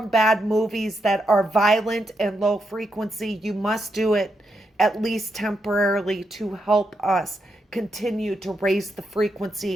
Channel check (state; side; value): normal; both; correlation 0.82